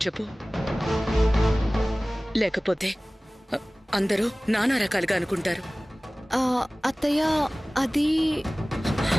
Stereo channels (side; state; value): both; normal; correlation 0.98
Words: చెప్పు. లేకపోతే అందరూ నానా రకాలుగా అనుకుంటారు. అత్తయ్య, అది